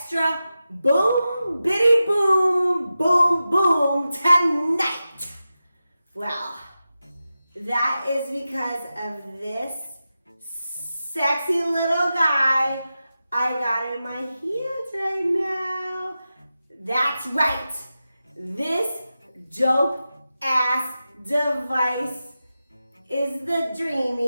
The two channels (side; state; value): both; inverted; correlation -0.92